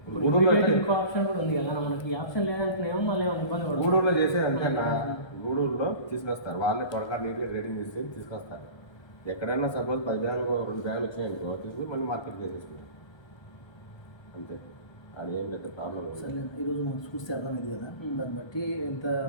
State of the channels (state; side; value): late; right; 1.3 ms